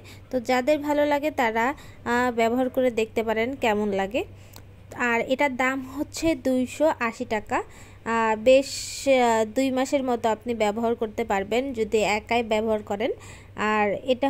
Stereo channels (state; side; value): identical; both; correlation 1.00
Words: তো যাদের ভালো লাগে তারা ব্যবহার করে দেখতে পারেন কেমন লাগে। আর এটার দাম হচ্ছে 280 টাকা। বেশ 2 মাসের মতো আপনি ব্যবহার করতে পারবেন যদি একাই ব্যবহার করেন। আর এটা